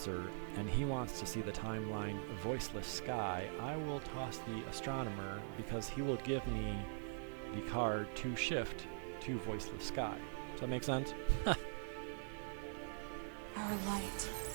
and he wants to see the timeline voiceless sky, I will toss the astronomer because he will give me the card to shift to voiceless sky. Does that make sense? Our light.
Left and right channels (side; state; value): left; silent; digital silence